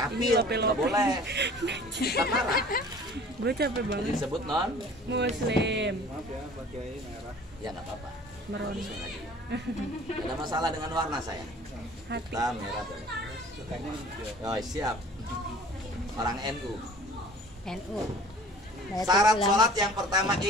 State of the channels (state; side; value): normal; both; correlation 0.47